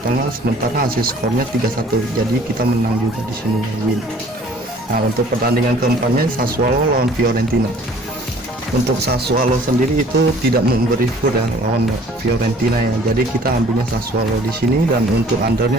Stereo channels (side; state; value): both; normal; correlation 0.53